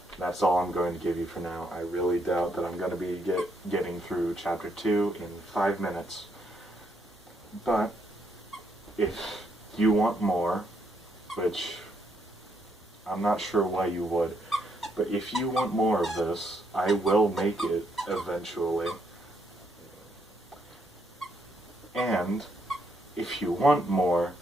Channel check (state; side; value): normal; both; correlation 0.75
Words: That's all I'm going to give you for now. I really doubt that I'm going to be getting through Chapter 2 in 5 minutes. But if you want more, which I'm not sure why you would, but if you want more of this, I will make it eventually. And if you want more,